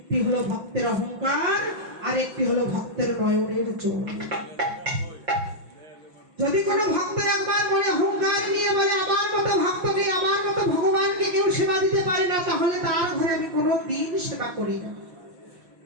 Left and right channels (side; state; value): left; late; 5.7 ms